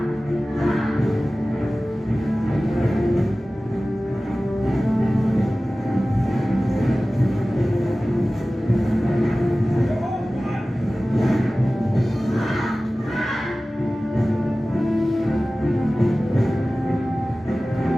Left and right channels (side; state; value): both; normal; correlation 0.97